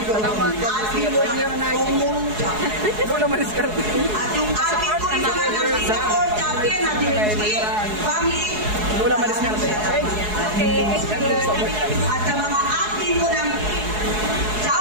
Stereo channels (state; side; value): late; left; 4.7 ms